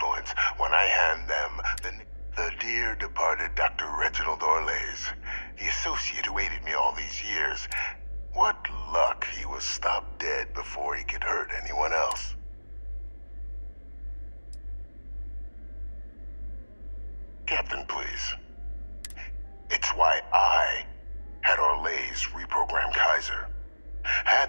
when I hand them the dear departed Dr. Reginald Orlays, the associate who aided me all these years. What luck he was stopped dead before he could hurt anyone else. Captain, please. It's why I had Orlays reprogram Kaiser.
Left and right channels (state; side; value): inverted; both; correlation -1.00